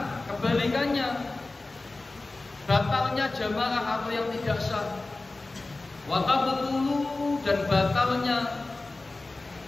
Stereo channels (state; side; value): quieter; right; 3.2 dB